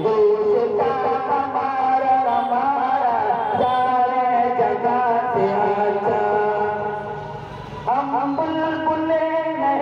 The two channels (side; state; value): both; identical; correlation 1.00